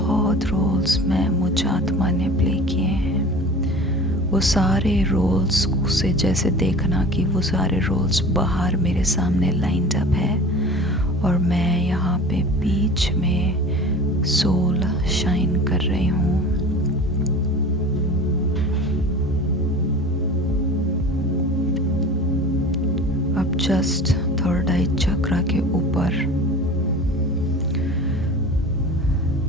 रोल्स में मुझ आत्मा ने प्ले किए हैं। वो सारे रोल्स से जैसे देखना कि वो सारे रोल्स बाहर मेरे सामने लाइंड अप है और मैं यहाँ पे बीच में सोल शाइन कर रही हूँ। अब जस्ट थर्ड आई चक्रा के ऊपर,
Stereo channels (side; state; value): both; normal; correlation 0.39